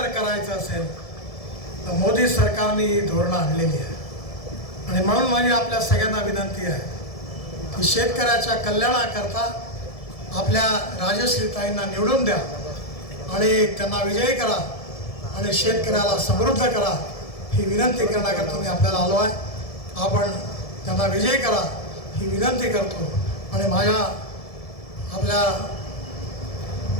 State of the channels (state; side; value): late; right; 1.7 ms